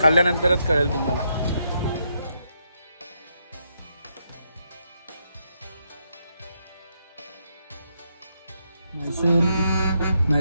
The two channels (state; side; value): inverted; both; correlation -0.79